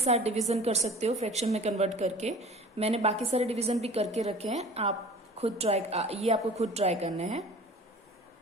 डिवीजन कर सकते हो फ्रैक्शन में कन्वर्ट करके। मैंने बाकी सारे डिवीजन भी करके रखे हैं, आप खुद ये आपको खुद ट्राई करने हैं।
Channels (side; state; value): both; normal; correlation 0.43